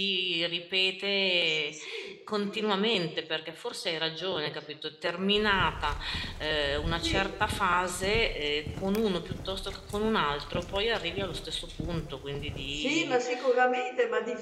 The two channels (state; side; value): identical; both; correlation 1.00